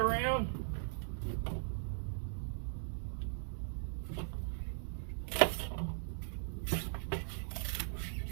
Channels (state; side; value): silent; left; digital silence